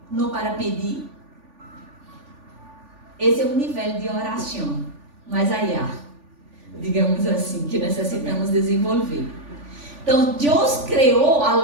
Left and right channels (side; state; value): left; late; 3.4 ms